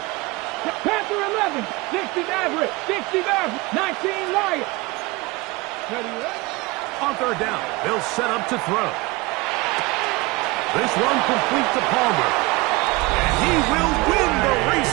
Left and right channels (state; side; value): quieter; left; 23.3 dB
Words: Panther 11, 60 Maverick, 60 Maverick, 19 Lion. On 3rd down, they'll set up to throw. This one complete to Palmer. And he will win the race